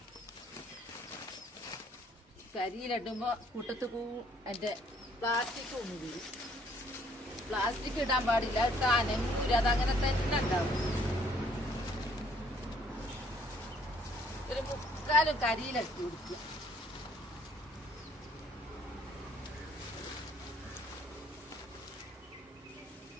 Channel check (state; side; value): normal; both; correlation 0.63